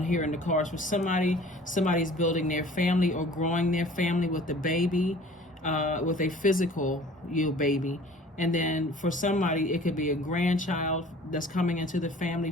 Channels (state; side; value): normal; both; correlation 0.48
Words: here in the cards. For somebody's building their family or growing their family with the baby, with a physical, you know, baby. And then for somebody, it could be a grandchild that's coming into the family.